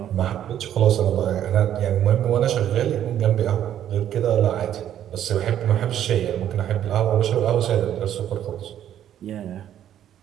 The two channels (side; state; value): left; quieter; 10.8 dB